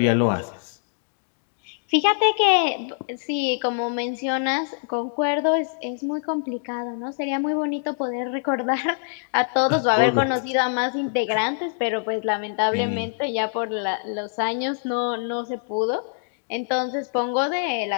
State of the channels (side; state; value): right; silent; 62 dB below the other